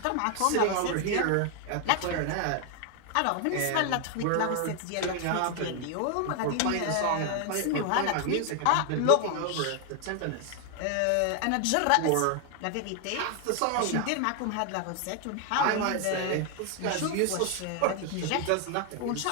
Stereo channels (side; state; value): both; different; correlation 0.00